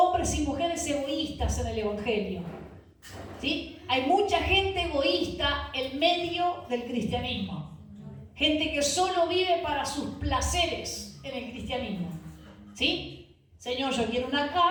y mujeres egoístas en el Evangelio. ¿Sí? Hay mucha gente egoísta en medio del cristianismo. Gente que solo vive para sus placeres en el cristianismo. ¿Sí? Señor, yo quiero una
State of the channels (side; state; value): both; identical; correlation 1.00